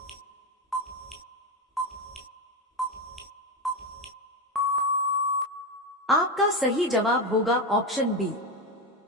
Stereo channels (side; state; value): both; normal; correlation 0.13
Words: आपका सही जवाब होगा ऑप्शन बी,